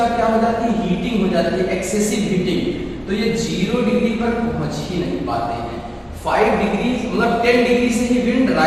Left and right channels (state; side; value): identical; both; correlation 1.00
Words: क्या हो जाती है, हीटिंग हो जाती है, एक्सेसिव हीटिंग। तो ये 0 डिग्री पर पहुंच ही नहीं पाते हैं। 5 डिग्री मतलब 10 डिग्री से ही विंड